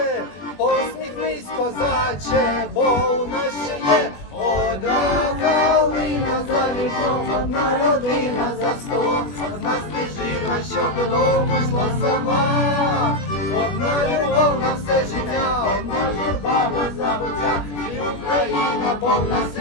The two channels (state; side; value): late; right; 21 ms